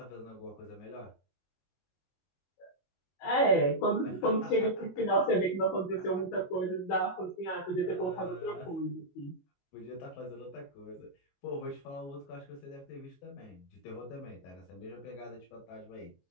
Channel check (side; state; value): right; late; 22 ms